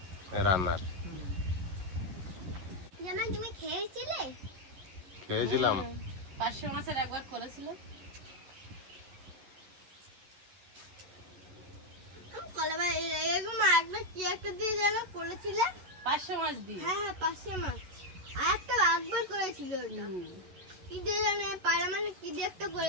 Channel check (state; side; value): late; left; 11 ms